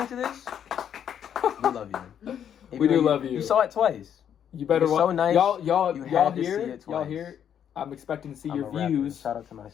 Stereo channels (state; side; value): quieter; right; 9.1 dB